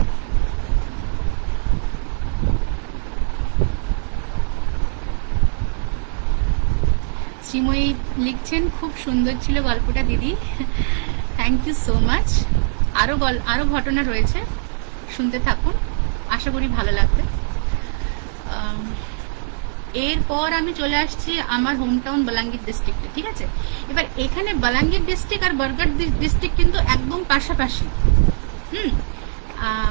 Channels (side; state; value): left; silent; digital silence